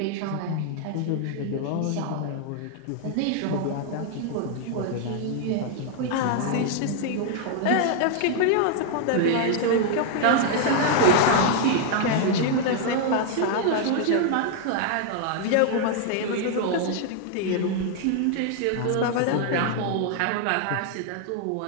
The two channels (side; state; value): both; different; correlation 0.00